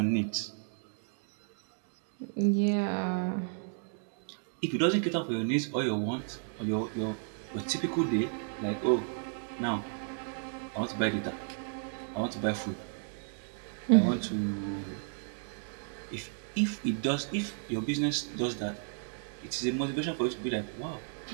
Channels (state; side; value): silent; left; 56 dB below the other